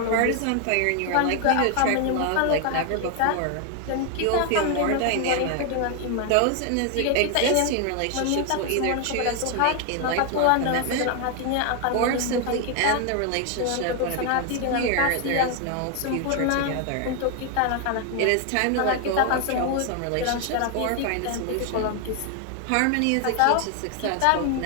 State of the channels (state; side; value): different; both; correlation 0.01